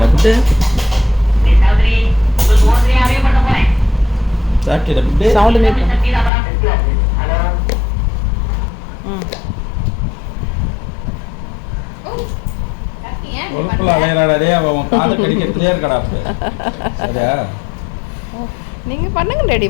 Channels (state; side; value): drops out; right; at 6.3 s